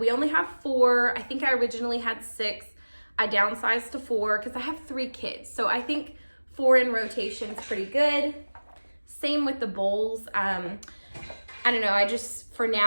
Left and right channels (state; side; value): inverted; both; correlation -1.00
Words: only have 4. I think I originally had 6. I downsized to 4 because I have 3 kids. So I think 4 in rotation is pretty good. Same with the bowls. I don't know, I just, for